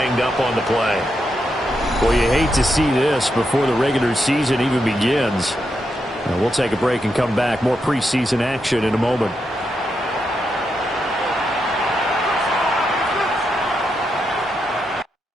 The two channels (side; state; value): both; normal; correlation 0.84